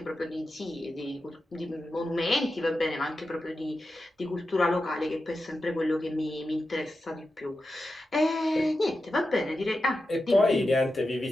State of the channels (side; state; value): both; normal; correlation 0.90